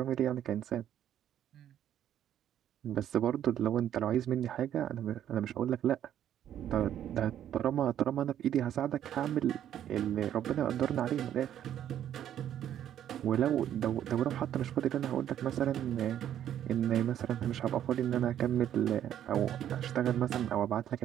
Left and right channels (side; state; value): left; quieter; 10.7 dB